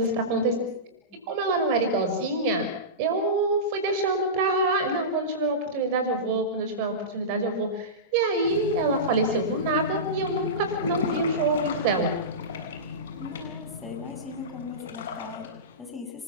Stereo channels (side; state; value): both; normal; correlation -0.19